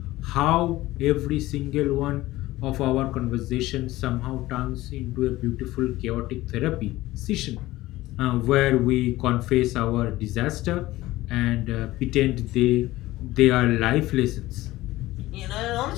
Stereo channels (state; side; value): quieter; right; 17.4 dB